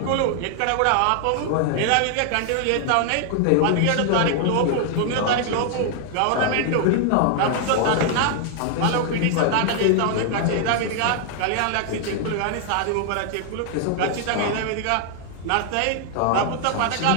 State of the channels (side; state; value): both; different; correlation 0.00